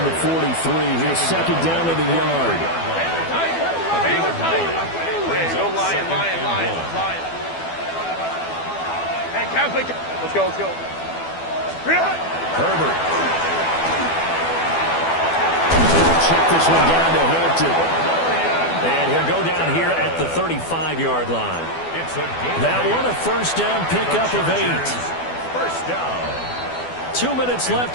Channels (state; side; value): late; right; 12 ms